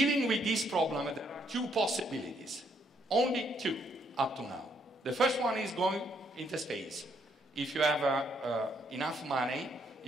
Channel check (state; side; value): normal; both; correlation 0.72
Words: with this problem, there are two possibilities. Only two up to now. The first one is going into space. If you have enough money,